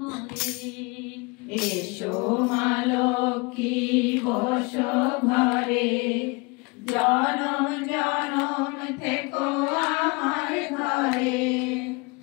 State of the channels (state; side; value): quieter; right; 27.7 dB